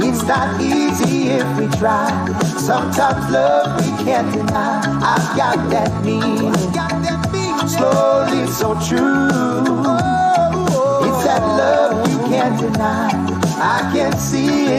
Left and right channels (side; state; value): both; identical; correlation 1.00